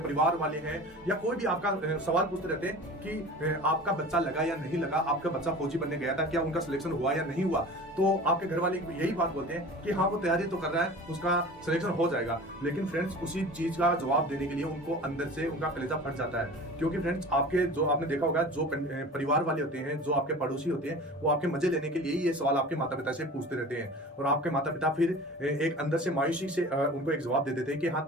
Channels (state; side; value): normal; both; correlation 0.38